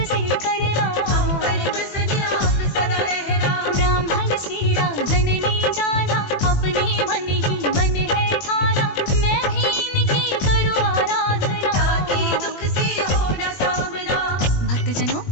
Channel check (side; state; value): right; late; 21 ms